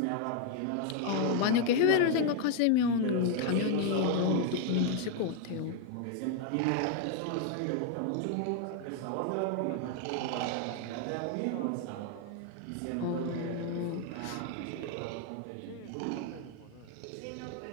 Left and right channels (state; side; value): different; both; correlation 0.00